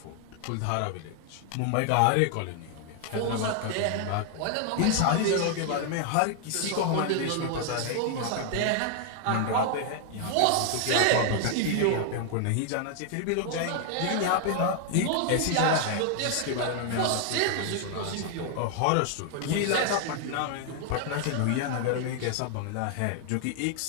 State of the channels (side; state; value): both; different; correlation 0.00